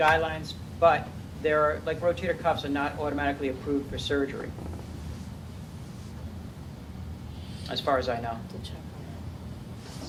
but there are, like rotator cuffs are not automatically approved for surgery, as far as I know.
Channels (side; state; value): both; identical; correlation 1.00